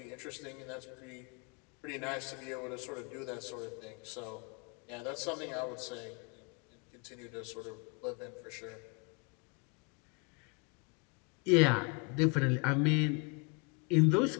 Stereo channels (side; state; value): right; quieter; 33.3 dB